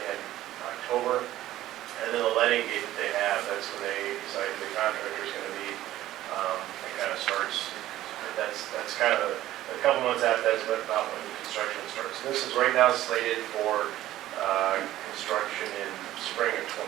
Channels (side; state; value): left; quieter; 14.4 dB